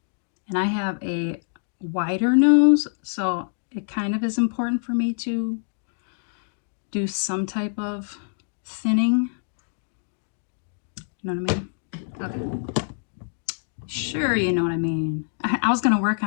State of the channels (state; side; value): silent; right; digital silence